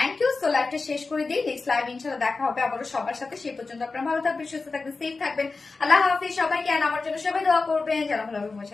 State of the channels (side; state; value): right; quieter; 4.0 dB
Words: you. So লাইভটা শেষ করে দিই, নেক্সট লাইভ ইনশাল্লাহ দেখা হবে আবারও সবার সাথে। সেই পর্যন্ত আপনারা ভালো থাকবেন, সুস্থ থাকবেন, সেফ থাকবেন। আল্লাহ হাফিজ সবাইকে। আমার জন্য সবাই দোয়া করবেন যেন ভালোভাবে